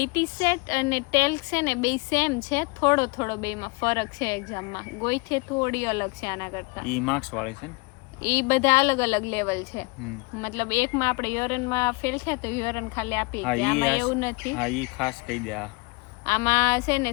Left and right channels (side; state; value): right; quieter; 28.4 dB